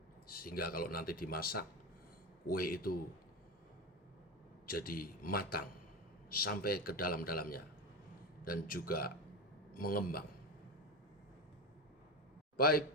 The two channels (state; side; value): normal; both; correlation 0.20